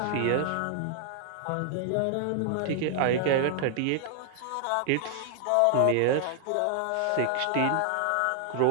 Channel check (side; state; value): both; different; correlation 0.00